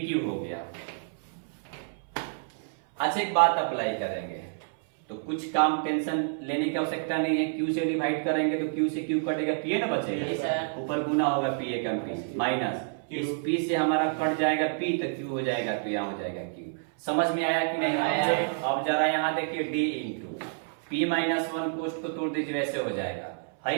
हो गया। अच्छा एक बात अप्लाई करेंगे तो कुछ काम टेंशन लेने की आवश्यकता नहीं है, Q से डिवाइड करेंगे तो Q से Q कटेगा, P ना बचेगा, ऊपर गुना होगा P कम P माइनस, इस P से हमारा कट जाएगा P तो Q हो जाएगा, तो यहाँ हो जाएगा Q। समझ में आया कि नहीं आया? अब जरा यहाँ देखिए D इंटू P माइनस 1 कोष्ट को तोड़ दीजिए, वैसे हो जाएगा। हाई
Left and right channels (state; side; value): silent; left; 59 dB below the other